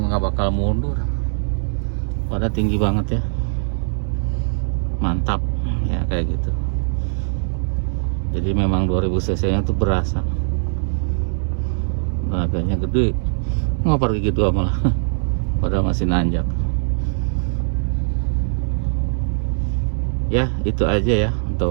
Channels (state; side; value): silent; left; digital silence